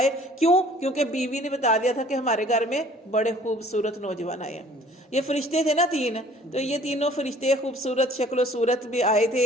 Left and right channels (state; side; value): normal; both; correlation 0.53